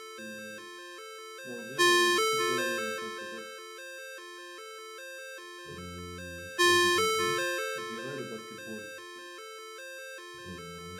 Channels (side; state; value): both; identical; correlation 1.00